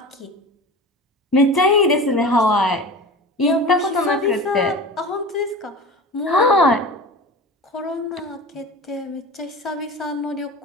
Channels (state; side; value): normal; both; correlation 0.33